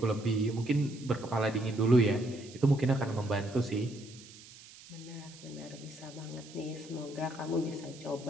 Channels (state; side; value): noise; right; hiss, 19 dB below the sound